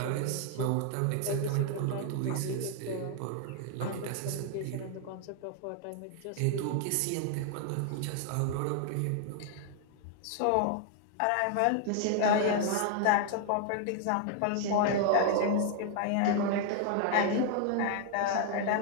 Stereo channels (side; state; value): both; different; correlation 0.00